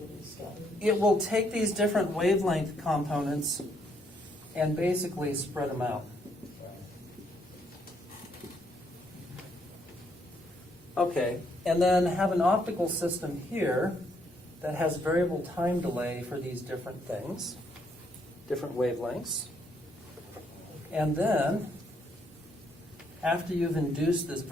It will take these different wavelength components and basically spread them out. Okay, and then have an optical system here that has variable time delay for these different things, different wavelengths. And then, after you've induced this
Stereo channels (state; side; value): normal; both; correlation 0.72